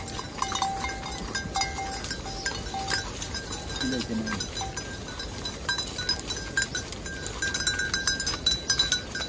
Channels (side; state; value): both; identical; correlation 1.00